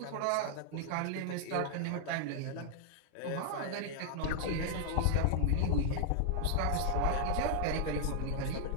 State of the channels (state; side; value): different; both; correlation 0.00